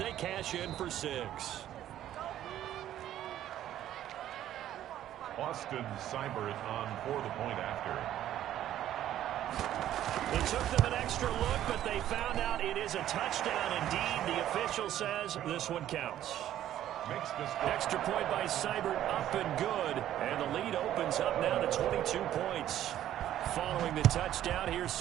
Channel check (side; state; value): left; quieter; 12.1 dB